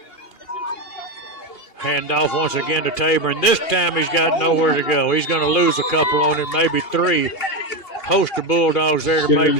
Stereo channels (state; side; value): late; right; 2.7 ms